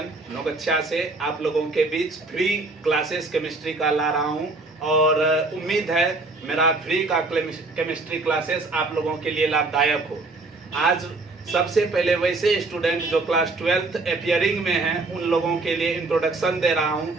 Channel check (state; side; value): quieter; left; 3.3 dB